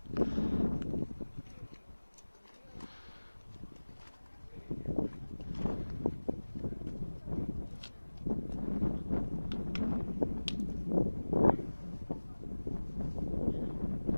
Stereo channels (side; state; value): both; inverted; correlation -1.00